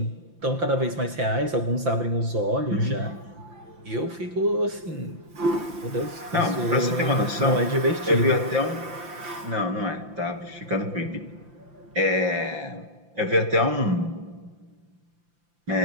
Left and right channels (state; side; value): late; left; 5.8 ms